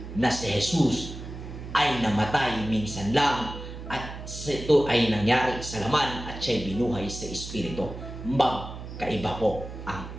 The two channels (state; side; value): noise; right; hum, 11 dB below the sound